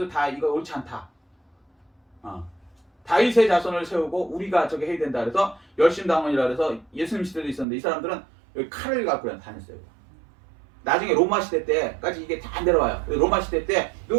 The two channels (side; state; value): left; drops out; at 7.7 s